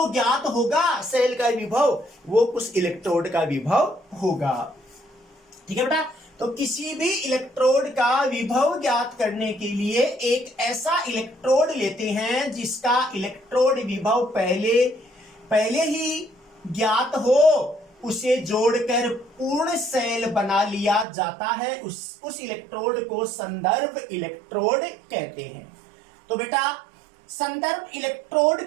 ज्ञात होगा सेल का विभव वो उस इलेक्ट्रोड का विभव होगा, ठीक है बेटा। तो किसी भी इलेक्ट्रोड का विभव ज्ञात करने के लिए एक ऐसा इलेक्ट्रोड लेते हैं जिसका इलेक्ट्रोड विभव पहले ही ज्ञात हो, उसे जोड़कर पूर्ण सेल बना लिया जाता है। उस इलेक्ट्रोड को संदर्भ इलेक्ट्रोड कहते हैं। तो बेटा संदर्भ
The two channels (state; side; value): drops out; left; at 21.1 s